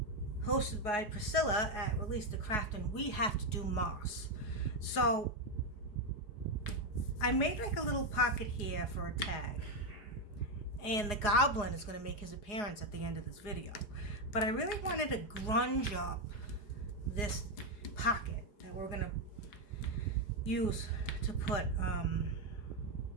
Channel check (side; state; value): right; late; 4.8 ms